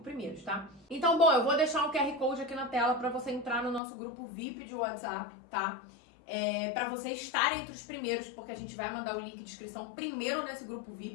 primeiros, tá? Então, bom, eu vou deixar um QR Code aqui na tela para você entrar no nosso grupo VIP de WhatsApp, tá? Para você estar entre os primeiros, porque a gente vai mandar o link de inscrição primeiro nesse grupo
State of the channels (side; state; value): right; drops out; at 3.8 s